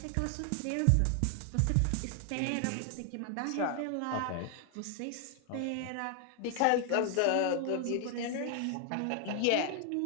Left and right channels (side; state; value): both; different; correlation 0.00